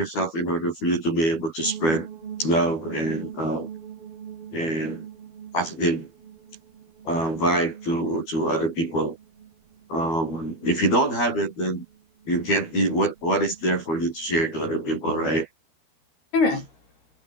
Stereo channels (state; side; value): late; right; 12 ms